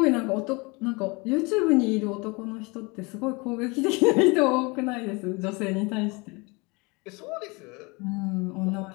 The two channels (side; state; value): right; quieter; 27.4 dB